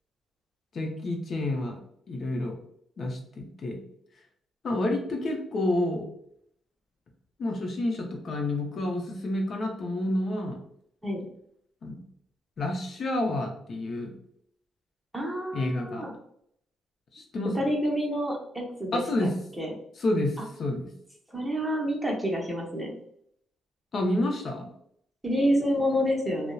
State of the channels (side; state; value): both; normal; correlation 0.81